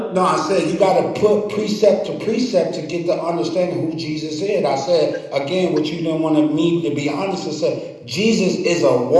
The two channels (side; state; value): both; identical; correlation 1.00